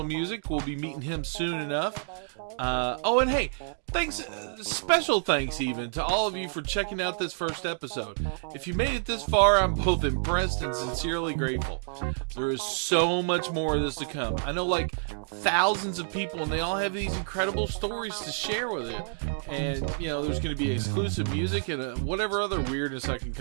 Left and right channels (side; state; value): left; silent; digital silence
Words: music. We'll be meeting him soon enough. Oh, and hey, thanks, special thanks even to all of you for checking out this first episode. If you made it this far, I'm both impressed and sincerely grateful. There is so much more of this to come. I know like thousands of people, and they all have these incredible stories to share with it. And, you know, there's going to be exclusive music and whatever other weirdness I can